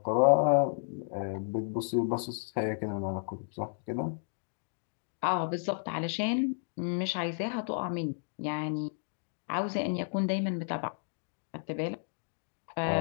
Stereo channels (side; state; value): right; silent; digital silence